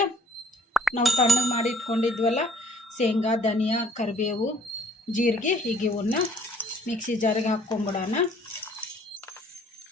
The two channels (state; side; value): normal; both; correlation 0.59